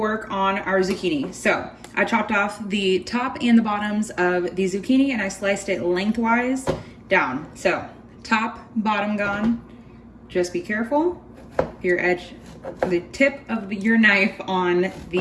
on our zucchini. So I chopped off the top and the bottoms of the zucchini and I sliced it lengthwise down. So top, bottom gone. Just be careful. Your edge, the tip of your knife on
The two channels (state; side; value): identical; both; correlation 1.00